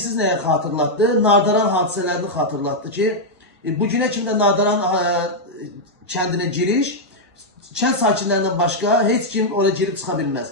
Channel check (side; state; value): both; normal; correlation -0.03